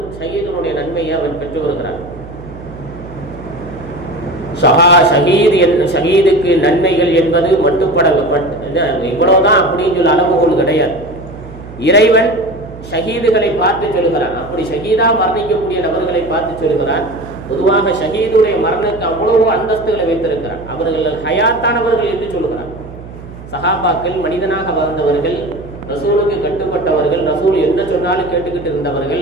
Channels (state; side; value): noise; right; hum, 15 dB below the sound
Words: ஷஹீதுடைய நன்மையை அவன் பெற்று வருகிறார். ஷஹீதுக்கு நன்மைகள் என்பது மட்டுப்பட இவ்வளவுதான் அப்படின்னு சொல்ல அளவுகோல் கிடையாது. இறைவன் ஷஹீதுகளை பார்த்து சொல்கிறான். அப்படி ஷஹீதா மரணிக்கக்கூடிய நபர்களை பார்த்து சொல்கிறான். பொதுவாக ஷஹீதுடைய மரணத்துக்கு அவ்வளவு அந்தஸ்துகளை வைத்திருக்கிறான். அவர்கள் ஹயாத்தானவர்கள் என்று சொல்கிறான். சஹாபாக்கள் மனிதனாக வாழ்ந்தவர்கள், ரசூலுக்கு கட்டுப்பட்டவர்கள், ரசூல் என்ன சொன்னாலும் கேட்டுக்கிட்டு